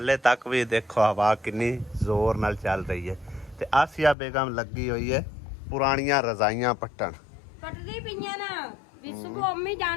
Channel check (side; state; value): right; drops out; at 4.2 s